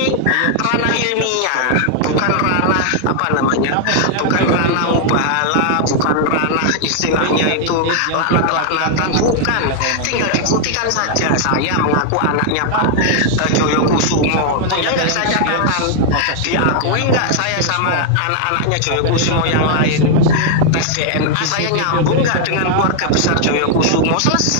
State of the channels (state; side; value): different; both; correlation 0.00